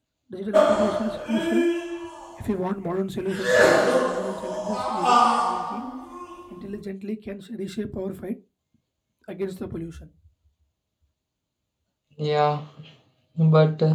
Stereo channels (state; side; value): identical; both; correlation 1.00